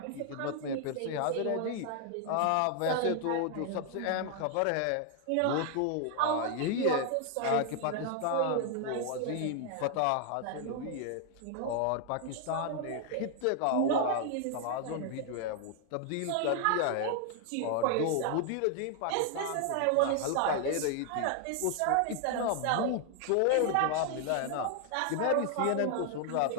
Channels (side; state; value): both; different; correlation 0.00